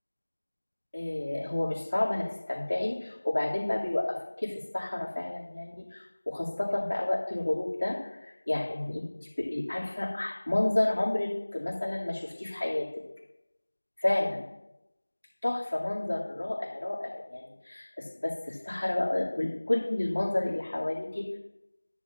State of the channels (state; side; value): inverted; both; correlation -1.00